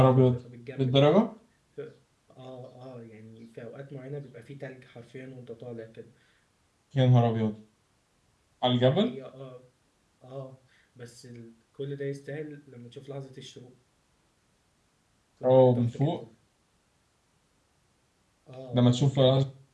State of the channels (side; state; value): both; identical; correlation 1.00